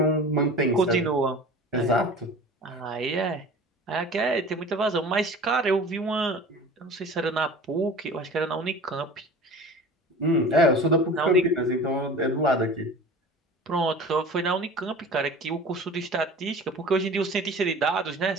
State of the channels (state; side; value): normal; both; correlation 0.39